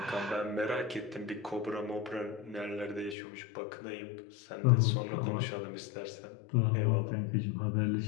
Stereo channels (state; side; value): drops out; right; at 3.2 s